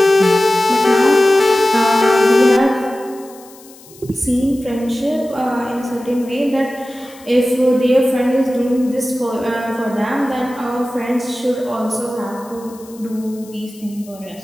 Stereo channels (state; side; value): noise; left; hiss, 23 dB below the sound